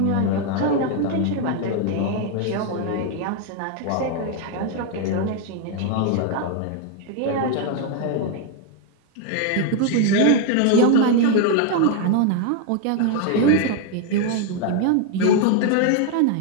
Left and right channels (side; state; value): both; different; correlation 0.01